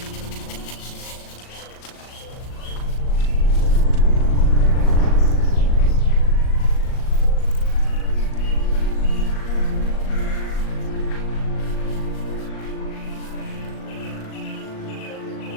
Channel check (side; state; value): right; late; 38 ms